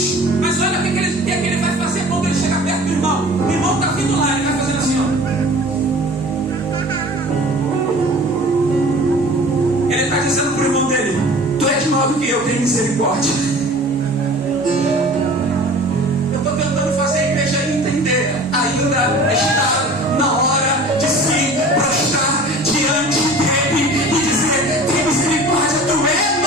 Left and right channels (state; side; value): normal; both; correlation 0.43